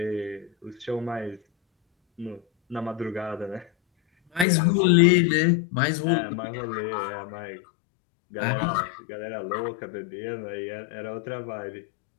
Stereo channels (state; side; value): drops out; right; at 4.5 s